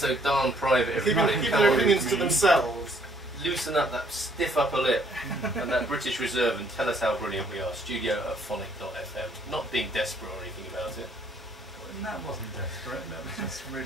darn private, everybody. Keep their opinions to themselves. Loosen up that stiff upper lip and that British reserve and tell us how brilliant we are. Studio@phonic.fm. Not being desperate or anything about it. That wasn't desperate, that was just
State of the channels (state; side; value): normal; both; correlation 0.65